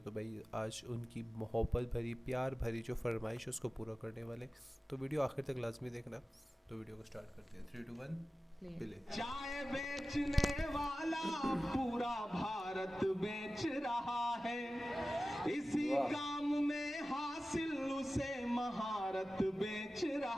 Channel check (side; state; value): both; normal; correlation 0.96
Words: तो भाई आज उनकी मोहब्बत भरी, प्यार भरी जो फरमाइश है उसको पूरा करने वाले। तो वीडियो आखिर तक लाजमी देखना। तो वीडियो को स्टार्ट करते हैं। 3, 2, 1 प्ले। चाय बेचने वाला पूरा भारत बेच रहा है, इसी काम में हासिल उसे महारत बेच